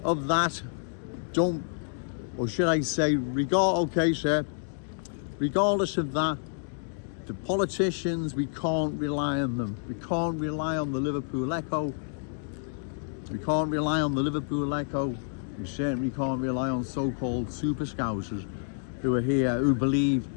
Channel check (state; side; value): silent; right; digital silence